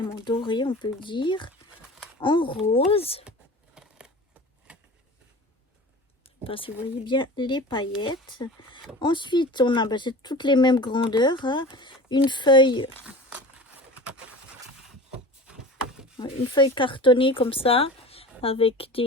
en doré, on peut dire. En rose. Je ne sais pas si vous voyez bien les paillettes. Ensuite, on a c'est toutes les mêmes grandeurs. Hein. Une feuille cartonnée comme ça, avec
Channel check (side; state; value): both; normal; correlation 0.36